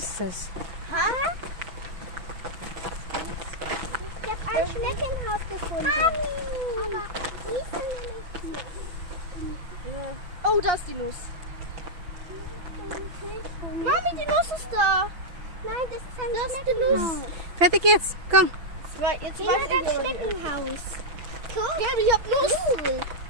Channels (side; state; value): left; late; 6.0 ms